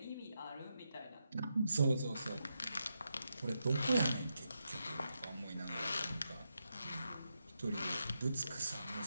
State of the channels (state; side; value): inverted; both; correlation -0.85